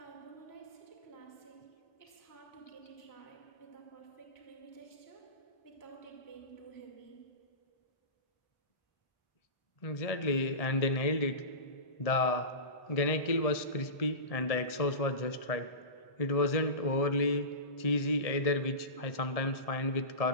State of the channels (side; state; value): right; late; 1.7 ms